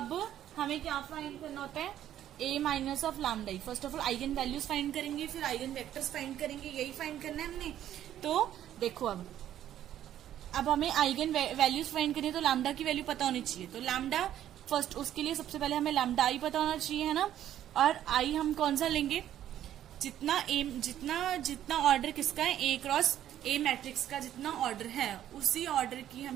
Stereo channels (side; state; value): left; quieter; 11.5 dB